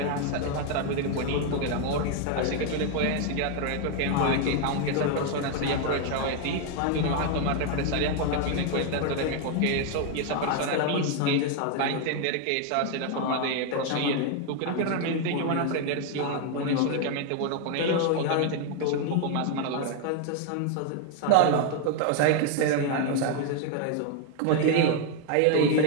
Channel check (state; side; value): different; both; correlation 0.01